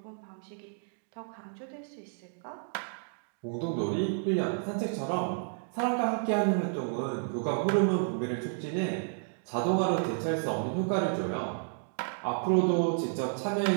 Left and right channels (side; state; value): left; silent; digital silence